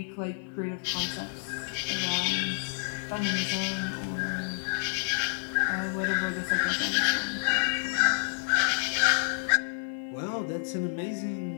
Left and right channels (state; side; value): silent; right; 58 dB below the other